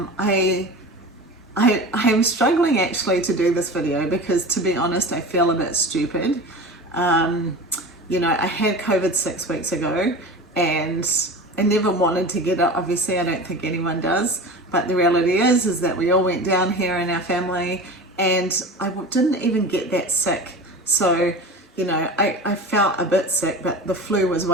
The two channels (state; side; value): normal; both; correlation 0.32